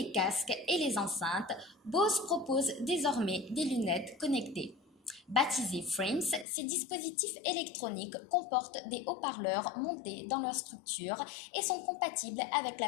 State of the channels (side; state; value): right; drops out; at 6.5 s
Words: casques et les enceintes, Bose propose désormais des lunettes connectées. Baptisés Frames, ces dispositifs électroniques comportent des haut-parleurs montés dans leur structure et sont compatibles avec la